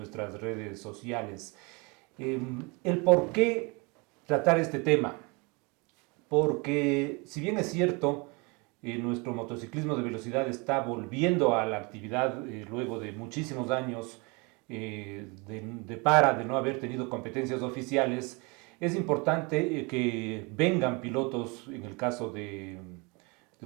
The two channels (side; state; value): left; quieter; 29.1 dB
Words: redes sociales. El por qué tratar este tema, porque si bien es cierto, nuestro motociclismo de velocidad está volviendo a la actividad luego de muchísimos años de no haber tenido competencias oficiales. Es importante que vengan pilotos, en el caso de